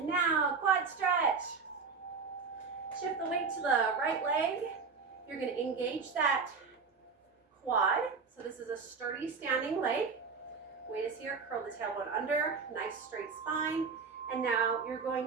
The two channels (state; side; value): quieter; left; 5.1 dB